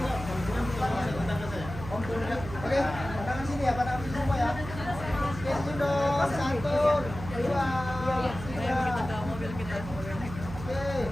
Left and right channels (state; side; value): noise; right; hum, 10 dB below the sound